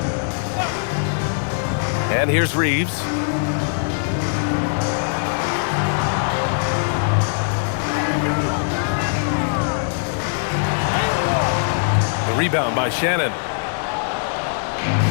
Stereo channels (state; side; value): silent; right; digital silence